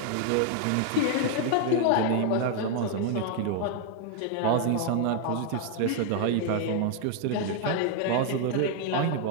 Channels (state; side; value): different; both; correlation 0.00